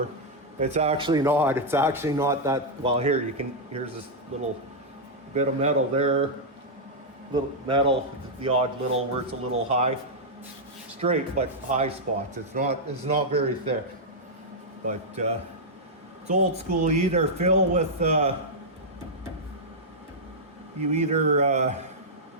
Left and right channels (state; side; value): normal; both; correlation -0.06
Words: It's actually not. It's actually not that. Well, here's this little bit of metal there, little metal, the odd little where it's a little high, straight but high spots. It's not very thick, but it's old school. You either fill with